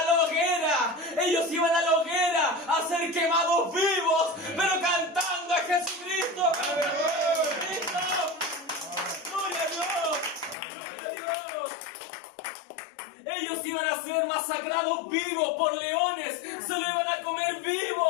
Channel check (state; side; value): drops out; right; at 10.6 s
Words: la hoguera. Ellos iban a la hoguera a ser quemados vivos, pero cantando a Jesucristo. ¡Jesucristo! ¡Gloria a Dios! ¡Gloria a Dios! Ellos iban a ser masacrados vivos por leones, se lo iban a comer